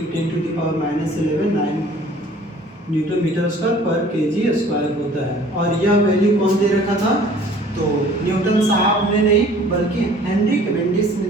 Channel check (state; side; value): normal; both; correlation 0.51